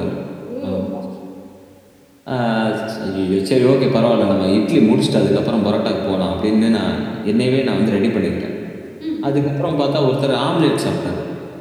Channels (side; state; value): both; identical; correlation 1.00